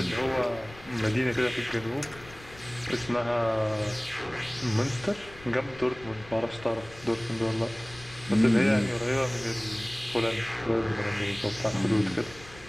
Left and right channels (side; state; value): left; noise; rumble, 20 dB below the sound